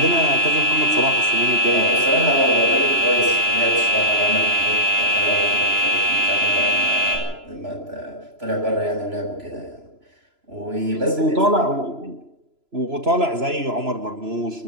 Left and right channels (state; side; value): late; left; 3.0 ms